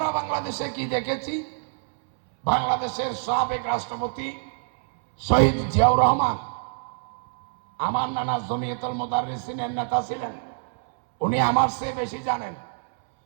বাংলাদেশে কি দেখেছি? বাংলাদেশের সাবেক রাষ্ট্রপতি শহীদ জিয়াউর রহমান আমার নানা জমিয়তুল মুদাররিসিনের নেতা ছিলেন, উনি আমার চেয়ে বেশি জানেন।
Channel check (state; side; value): silent; left; 62 dB below the other